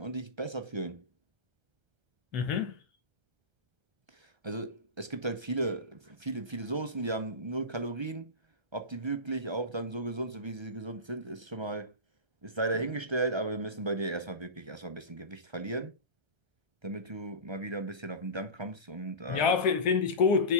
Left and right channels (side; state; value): left; late; 1.3 ms